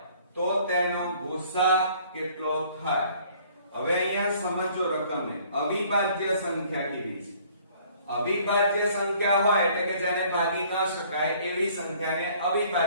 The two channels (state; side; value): inverted; both; correlation -0.57